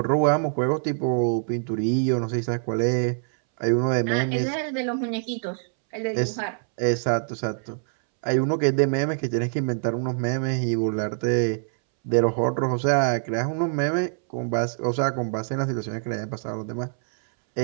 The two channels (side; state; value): left; silent; 62 dB below the other